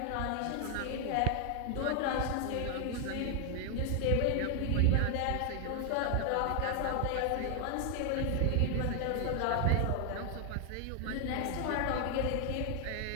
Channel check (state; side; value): different; both; correlation 0.00